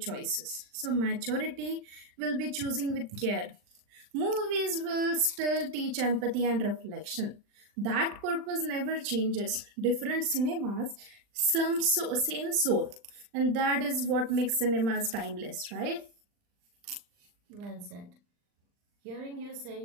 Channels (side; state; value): left; late; 39 ms